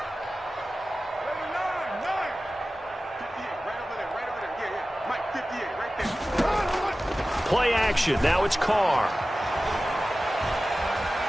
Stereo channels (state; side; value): normal; both; correlation 0.96